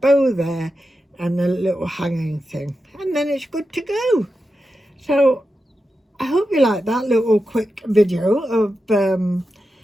there and a little hanging thing, and then it's good to go. So I hope you like that little quick video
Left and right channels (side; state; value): both; normal; correlation 0.90